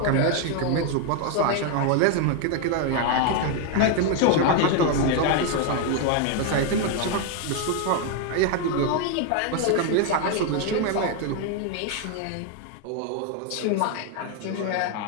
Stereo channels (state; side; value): different; both; correlation 0.01